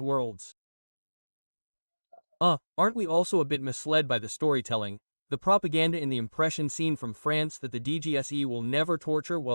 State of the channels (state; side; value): inverted; both; correlation -1.00